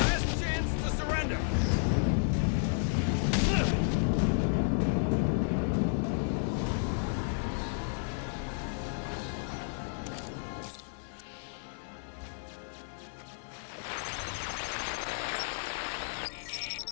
chance to surrender!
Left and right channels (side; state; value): right; silent; digital silence